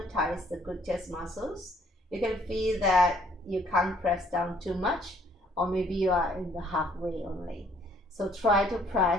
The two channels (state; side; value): normal; both; correlation 0.63